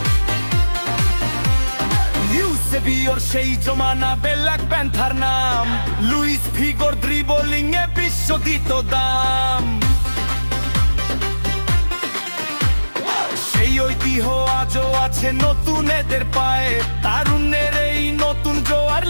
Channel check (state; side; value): inverted; both; correlation -1.00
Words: ইউসেবিওর সেই জমানা, ব্ল্যাক প্যান্থার নাম, লুইস ফিগোর ড্রিবলিং এ বিশ্ব দিত দাম। সেই ঐতিহ্য আজও আছে নতুন এদের পায়ে, তারুণ্যের এই নতুন জোয়ার